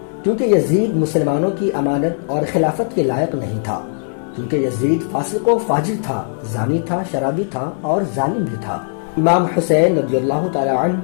کیونکہ یزید مسلمانوں کی امانت اور خلافت کے لائق نہیں تھا، کیونکہ یزید فاسق و فاجر تھا، زانی تھا، شرابی تھا اور ظالم بھی تھا۔ امام حسین رضی اللہ تعالی عنہ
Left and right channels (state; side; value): silent; right; 67 dB below the other